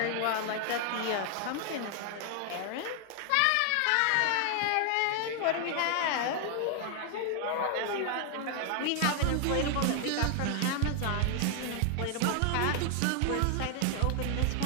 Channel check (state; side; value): different; both; correlation 0.00